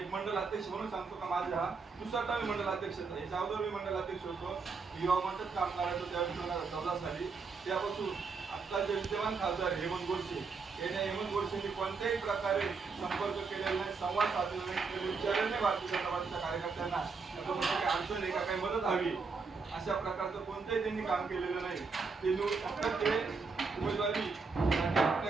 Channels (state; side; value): quieter; left; 4.7 dB